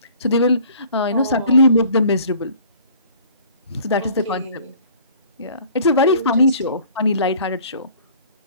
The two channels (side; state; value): both; inverted; correlation -0.51